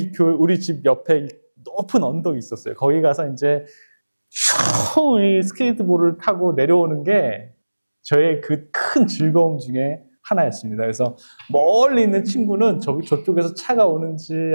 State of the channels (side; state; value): both; inverted; correlation -1.00